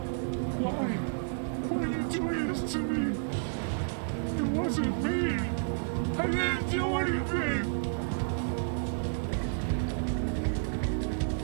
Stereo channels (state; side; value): silent; left; digital silence